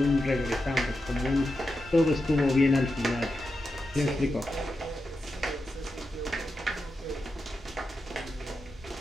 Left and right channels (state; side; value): normal; both; correlation 0.89